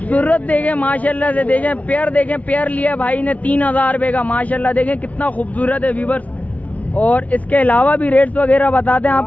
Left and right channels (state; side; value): late; right; 0.069 ms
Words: देखें माशाल्लाह से, देखें पेयर, देखें पेयर लिया भाई ने 3000 रुपये का। माशाल्लाह देखें कितना खूबसूरत है व्यूअर्स। और इसके अलावा भी रेट्स वगैरह बताते हैं